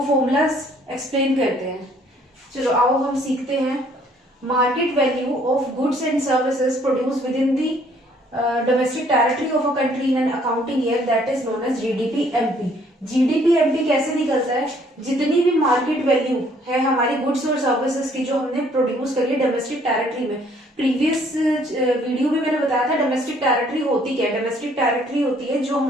formulas explain करते हैं. चलो आओ हम सीखते हैं. Market value of goods and services produce within the domestic territory of a country in an accounting year that is known as GDP MP. GDP MP कैसे निकलता है? जितनी भी मार्केट वैल्यू है हमारी गुड्स और सर्विसेज की जो हमने प्रोड्यूस करी है डोमेस्टिक टेरिटरी में. प्रीवियस वीडियो में मैंने बताया था डोमेस्टिक टेरिटरी होती क्या है. डोमेस्टिक टेरिटरी होती है जो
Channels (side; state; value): both; normal; correlation 0.62